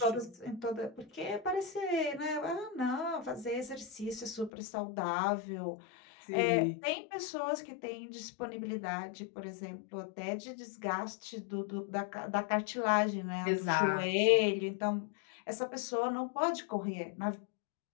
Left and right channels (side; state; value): right; drops out; at 4.5 s